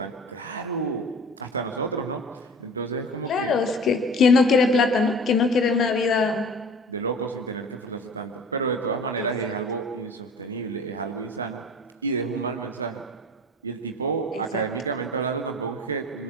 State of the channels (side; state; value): both; normal; correlation 0.41